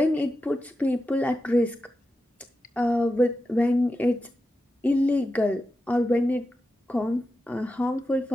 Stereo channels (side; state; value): both; normal; correlation 0.90